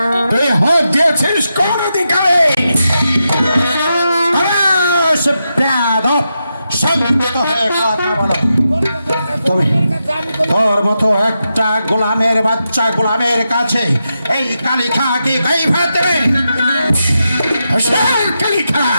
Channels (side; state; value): both; inverted; correlation -0.87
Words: হাত দিয়েছিস কোন অধিকারে? তোর মতো একটা গোলামের বাচ্চা গোলামের কাছে এই কালিখা কি গাই ভাত দেবে? কালিখা